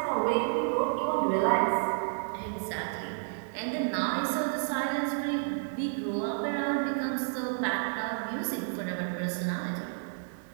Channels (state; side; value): silent; left; digital silence